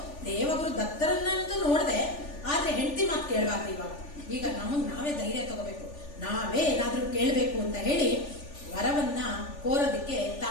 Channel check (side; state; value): right; late; 3.4 ms